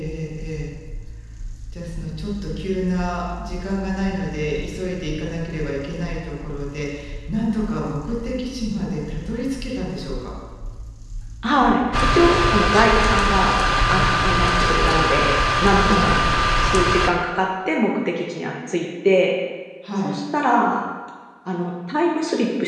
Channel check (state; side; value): identical; both; correlation 1.00